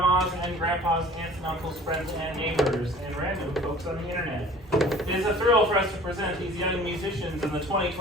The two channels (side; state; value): both; normal; correlation 0.47